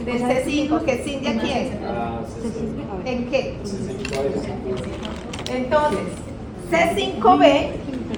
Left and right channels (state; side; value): identical; both; correlation 1.00